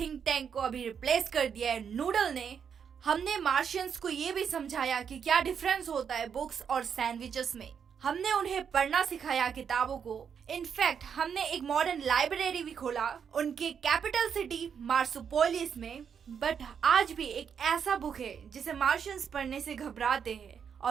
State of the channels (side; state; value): left; quieter; 7.3 dB